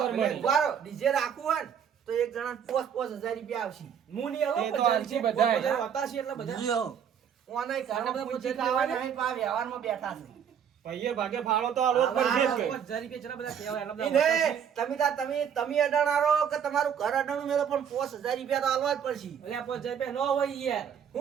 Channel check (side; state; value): left; quieter; 8.2 dB